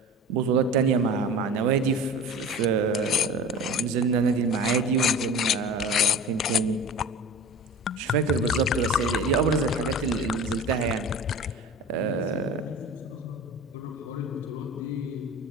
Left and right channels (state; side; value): normal; both; correlation 0.36